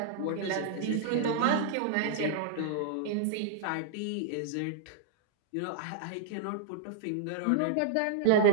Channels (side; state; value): both; different; correlation -0.01